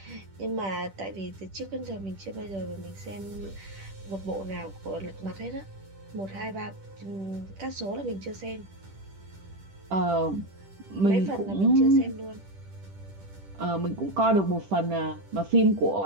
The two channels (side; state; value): left; late; 10 ms